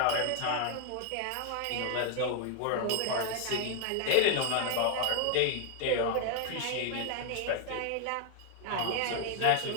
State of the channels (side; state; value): both; different; correlation 0.01